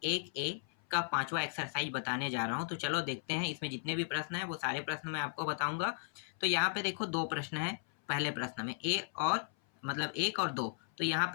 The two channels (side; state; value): right; silent; 54 dB below the other